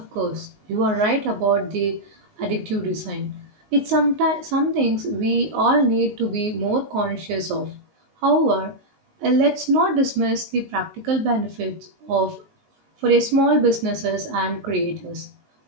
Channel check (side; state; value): left; late; 19 ms